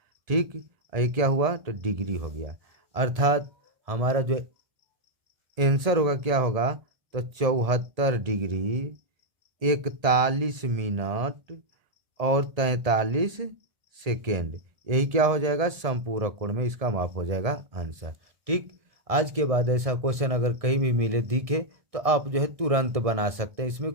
ठीक, ये क्या हुआ, तो डिग्री हो गया। अर्थात हमारा जो आंसर होगा क्या होगा, तो 74 डिग्री 41 मिनट और 43 सेकेंड, यही क्या हो जाएगा, समपूरक कोण में इसका माप हो जाएगा आंसर। ठीक, आज के बाद ऐसा क्वेश्चन अगर कहीं भी मिले दिखे तो आप जो है तुरंत बना सकते हैं, इसमें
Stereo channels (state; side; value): late; left; 1.7 ms